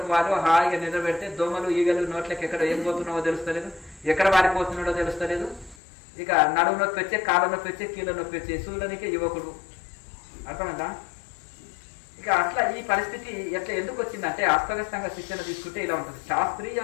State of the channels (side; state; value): right; drops out; at 5.8 s